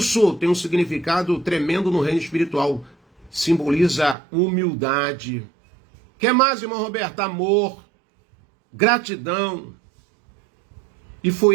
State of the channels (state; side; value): drops out; left; at 4.2 s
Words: tem um significado tremendo no reino espiritual. Simboliza humildade. Quer mais, irmão Roberto? Amor, gratidão. E